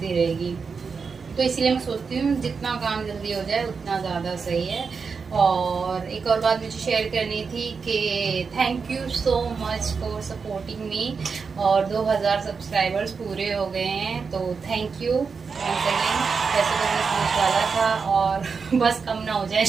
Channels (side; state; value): left; quieter; 5.3 dB